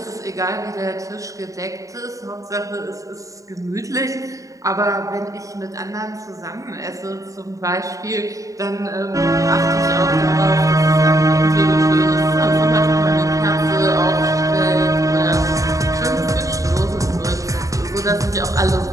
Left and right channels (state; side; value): late; left; 0.16 ms